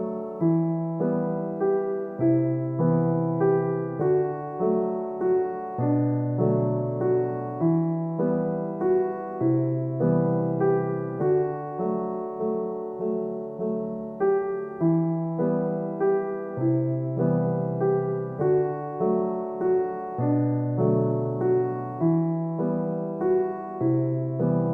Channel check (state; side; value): identical; both; correlation 1.00